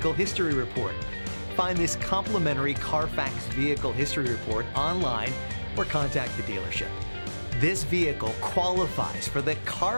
History Report. Find this complimentary Carfax Vehicle History Report online or contact the dealership. This vehicle qualifies for the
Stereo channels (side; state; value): both; inverted; correlation -1.00